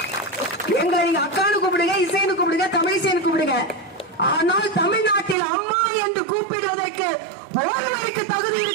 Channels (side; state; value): left; drops out; at 5.4 s